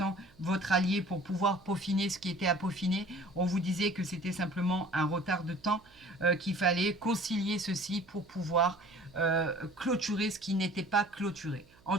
votre allié pour pouvoir peaufiner ce qui était à peaufiner. On vous disait que c'était simplement un retard de temps, qu'il fallait concilier ceci pour pouvoir clôturer ce qui n'était pas clôturé. En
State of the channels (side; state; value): right; noise; hum, 28 dB below the sound